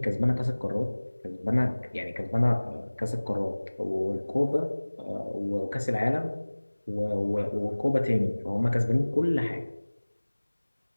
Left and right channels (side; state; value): both; inverted; correlation -1.00